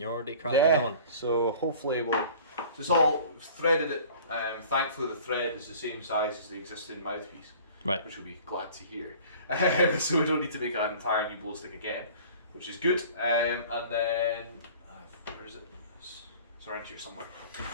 already cracking on. So hopefully we'll... It's all threaded it. Thankfully the thread is the same size as the existing mouthpiece. Right. Which we'll be glad to hear. So we don't need to make an entire new blow stick again, which is good. And then... where is it? It's around here somewhere.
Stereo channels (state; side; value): inverted; both; correlation -0.45